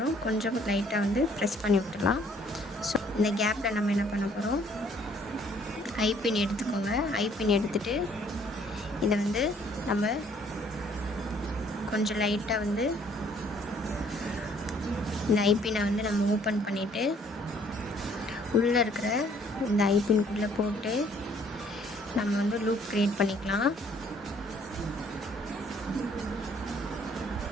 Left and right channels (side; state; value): both; normal; correlation 0.61